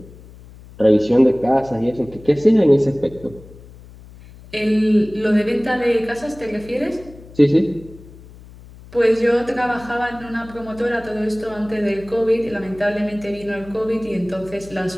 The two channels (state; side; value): noise; left; hum, 20 dB below the sound